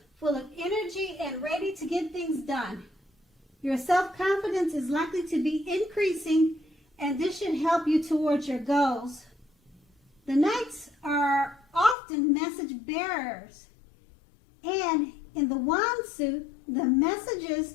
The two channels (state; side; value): drops out; right; at 12.0 s